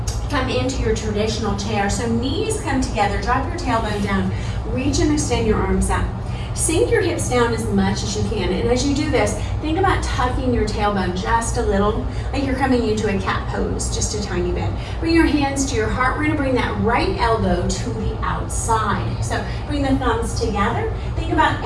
come into your traditional chair. So knees come together, drop your tailbone down, reach and extend your arms out. Sink your hips down as much as you can. And as you do this, think about tucking your tailbone just a little, like you're coming into a cat pose, just a tiny bit. Bring your hands to your heart. We're gonna bring that right elbow to the outside. So bring the thumbs together. Think about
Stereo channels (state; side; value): identical; both; correlation 1.00